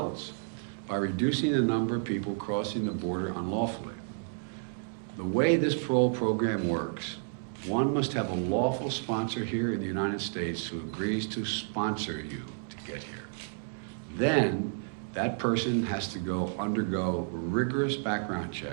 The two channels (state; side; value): silent; left; digital silence